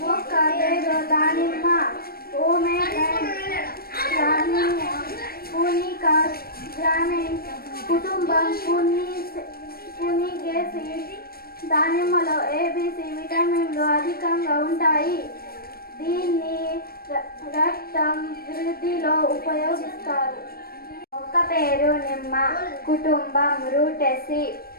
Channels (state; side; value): late; right; 0.44 ms